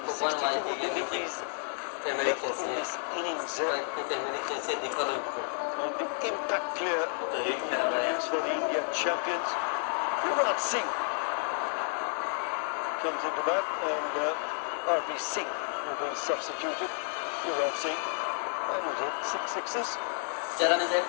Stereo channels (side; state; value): right; silent; 56 dB below the other